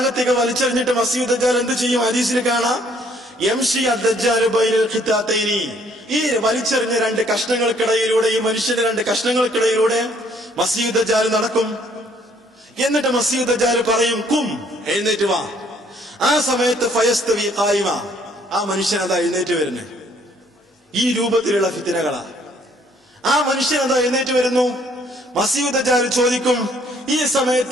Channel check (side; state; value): both; normal; correlation 0.63